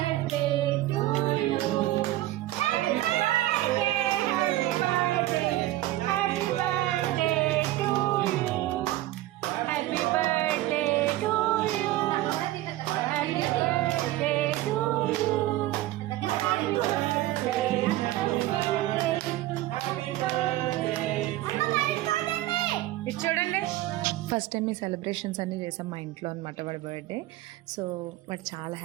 చూడండి, ఫస్ట్ టైం ఈ సెలబ్రేషన్స్ అన్నీ చేసాం మా ఇంట్లో అనమాట వాడి బర్త్డే. సో వాడు చాలా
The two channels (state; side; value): quieter; left; 16.0 dB